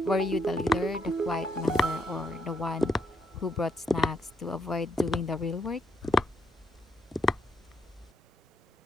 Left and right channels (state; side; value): normal; both; correlation 0.76